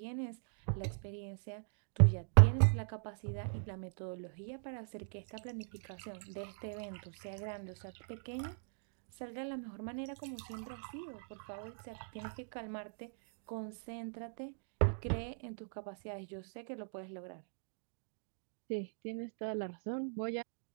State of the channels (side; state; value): left; silent; digital silence